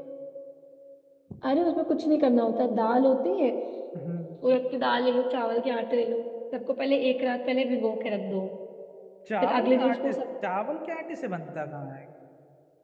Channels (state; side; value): identical; both; correlation 1.00